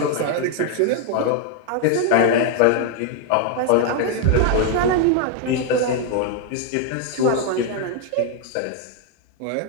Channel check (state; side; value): different; both; correlation 0.00